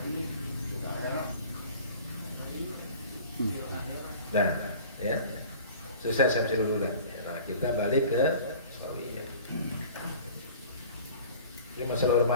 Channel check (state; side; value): inverted; both; correlation -0.44